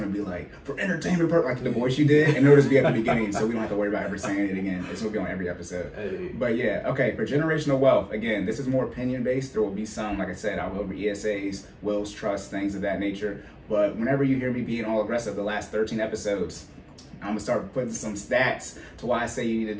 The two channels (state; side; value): identical; both; correlation 1.00